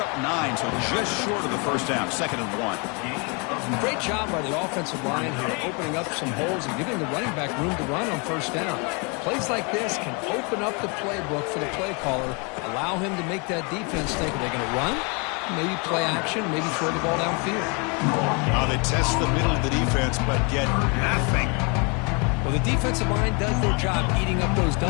9, so just short of the first down. 2nd and 1. Great job by the offensive line here, opening up some holes and giving the running back room to run on first down. Plays like this can open up the playbook for the play caller, allow him to make that defense think, are they going to run? Maybe play action, maybe throw the ball downfield. Now they test the middle of the defense, but get nothing. Well, the defensive line does their job eating up those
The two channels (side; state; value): right; quieter; 32.8 dB